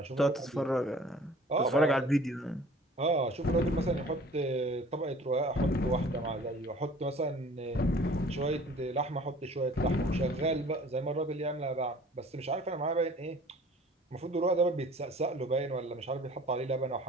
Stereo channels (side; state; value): both; normal; correlation 0.49